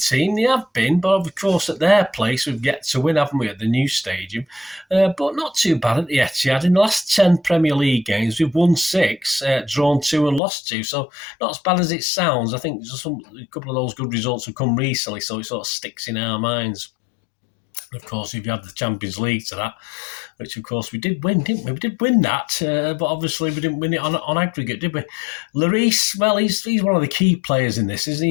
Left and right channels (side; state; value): right; drops out; at 10.4 s